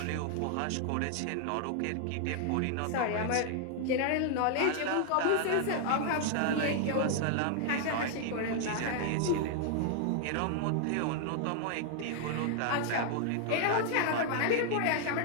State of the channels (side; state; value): both; different; correlation 0.00